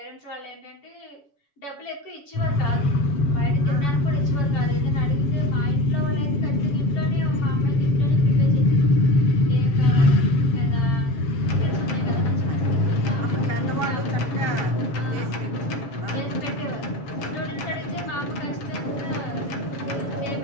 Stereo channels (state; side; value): late; right; 7.1 ms